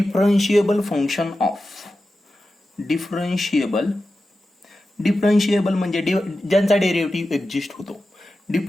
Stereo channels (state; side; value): normal; both; correlation 0.92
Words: function of. Differentiable म्हणजे ज्यांचा डेरिव्हेटिव्ह एक्झिस्ट होतो.